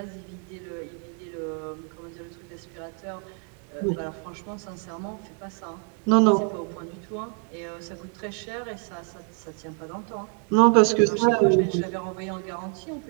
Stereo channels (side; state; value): left; quieter; 36.6 dB